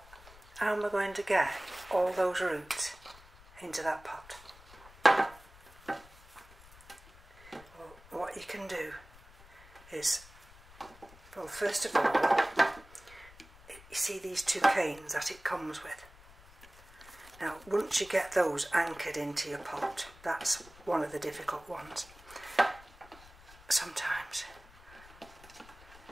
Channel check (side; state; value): left; noise; rumble, 22 dB below the sound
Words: how am I going to get all those roots into that pot? Well, what you can do is, well, first of all, you see these two canes that it comes with. Now, once you get those anchored into your pot, that's one of the difficult ones. Sometimes